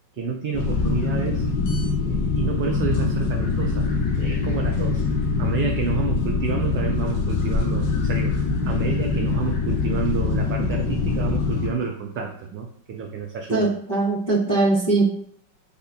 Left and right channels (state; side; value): late; right; 5.2 ms